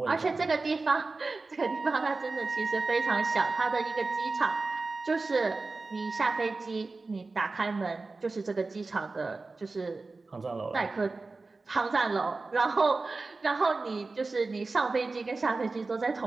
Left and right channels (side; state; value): left; quieter; 3.7 dB